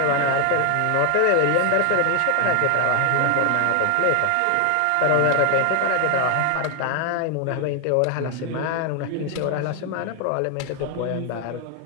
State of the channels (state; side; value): different; both; correlation 0.01